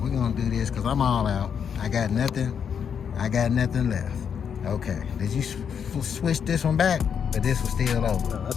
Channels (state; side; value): quieter; right; 7.4 dB